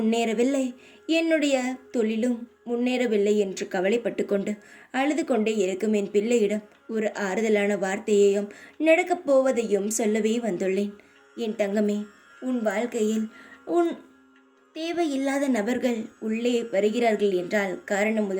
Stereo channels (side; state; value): both; identical; correlation 1.00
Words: என்னுடைய தொழிலும் முன்னேறவில்லை என்று கவலைப்பட்டு கொண்டு அழுது கொண்டே இருக்கும் என் பிள்ளையிடம் ஒரு ஆறுதலான வார்த்தையையும் நடக்கப் போவதையும் சொல்லவே வந்துள்ளேன். என் தங்கமே, உன் வாழ்க்கையில் உன் தேவையில்லாத நபர்கள் உள்ளே வருகிறார்கள் என்றால்